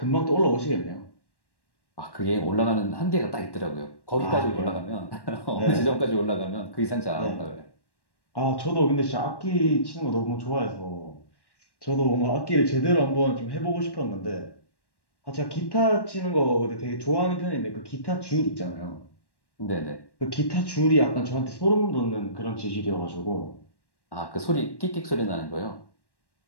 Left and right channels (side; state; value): right; late; 1.1 ms